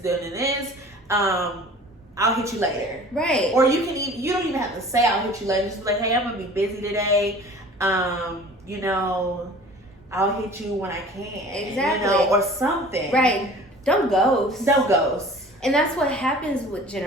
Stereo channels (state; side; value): normal; both; correlation 0.45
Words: this. I'll hit you later. Right. Or you don't even have to say I'll hit you later. Just be like, hey, I'm gonna be busy today. You know, I'll hit you when I can. Exactly. You know, or something. Right. Don't ghost. Don't ghost. And that's what happens with